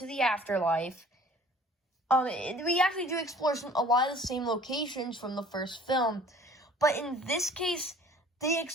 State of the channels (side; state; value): both; normal; correlation 0.50